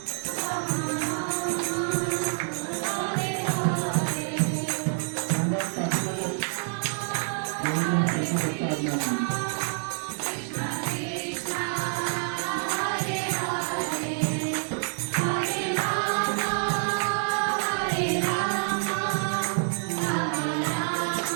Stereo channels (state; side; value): silent; left; 60 dB below the other